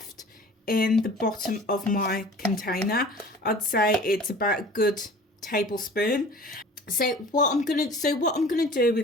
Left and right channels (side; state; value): both; normal; correlation 0.44